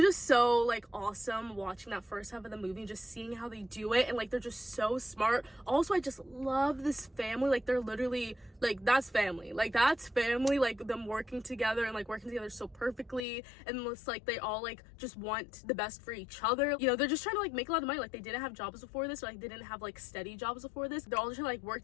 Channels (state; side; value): drops out; right; at 13.2 s